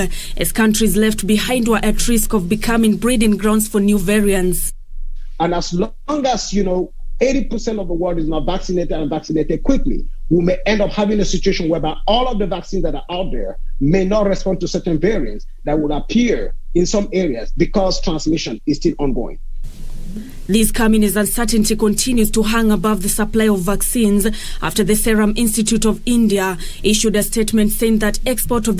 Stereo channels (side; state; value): both; identical; correlation 1.00